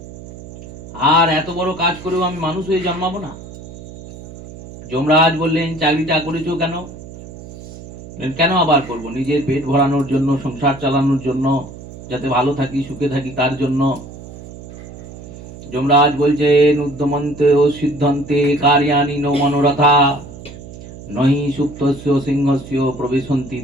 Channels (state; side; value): noise; right; hum, 15 dB below the sound